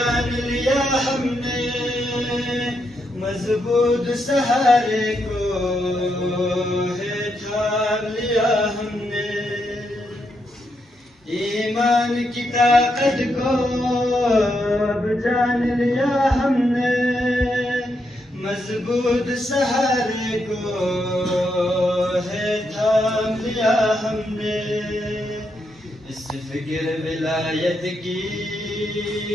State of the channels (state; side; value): normal; both; correlation 0.81